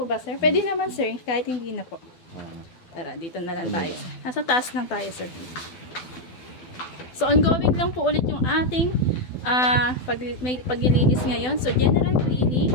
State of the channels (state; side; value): late; right; 12 ms